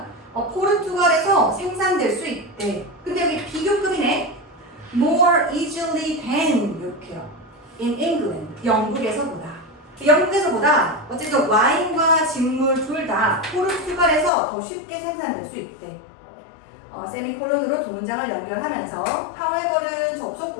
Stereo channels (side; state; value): right; drops out; at 14.3 s